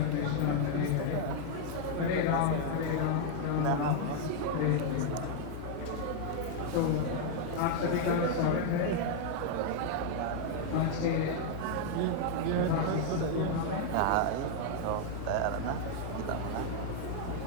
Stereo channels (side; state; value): both; different; correlation 0.00